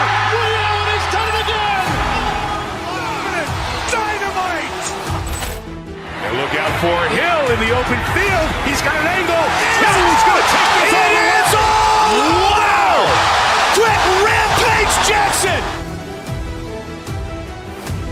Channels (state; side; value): identical; both; correlation 1.00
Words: Leon has done it again. Dynamite. And look out for Hill in the open field. He's got an angle. Hill's going to take this all the way. Wow. Quick rampage Jackson.